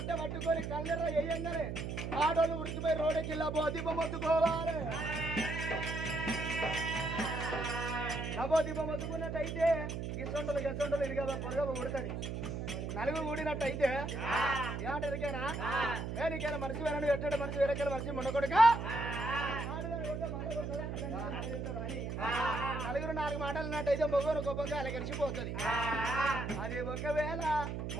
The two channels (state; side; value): noise; right; hum, 4 dB below the sound